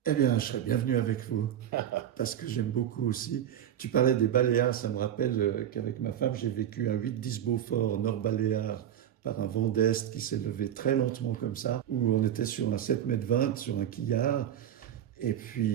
Eh bien, je serais bienvenu avec vous, parce que j'aime beaucoup aussi. Tu parlais des Baléares, ça me rappelle qu'avec ma femme, j'ai vécu un 8-10 Beaufort Nord-Baléares par un vent d'Est qui s'est levé très lentement comme ça, où on était sur un 7,20 m sur un quillard, et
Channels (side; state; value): left; quieter; 10.4 dB